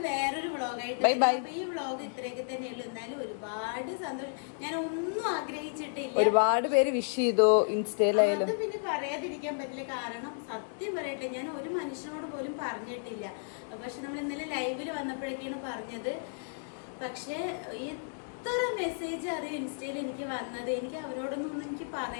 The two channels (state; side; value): silent; right; digital silence